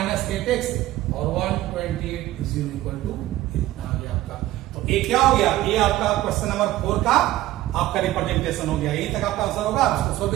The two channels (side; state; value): left; quieter; 15.6 dB